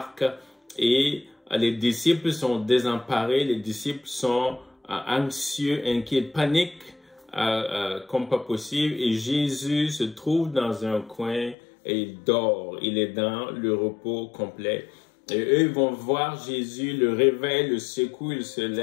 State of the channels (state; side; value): drops out; right; at 11.6 s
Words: Et les disciples sont désemparés, les disciples sont anxieux, inquiets, paniquent comme pas possible. Et Jésus se trouve dans un coin et il dort, il est dans le repos complet. Et eux, ils vont voir Jésus, le réveil, le secoue, il se